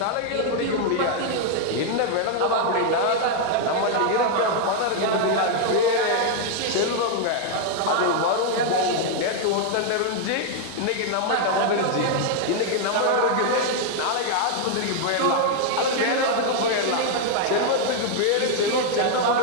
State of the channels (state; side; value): different; both; correlation 0.00